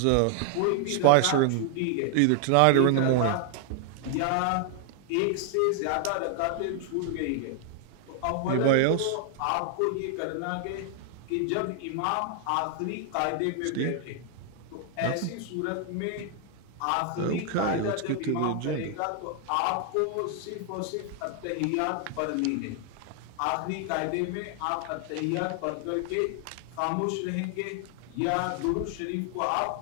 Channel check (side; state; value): both; different; correlation 0.00